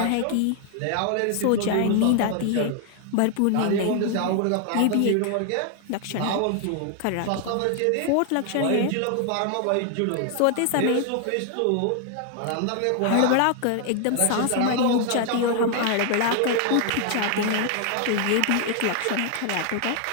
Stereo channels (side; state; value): both; different; correlation 0.00